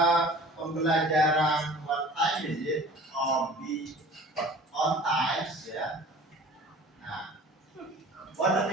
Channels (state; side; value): normal; both; correlation 0.45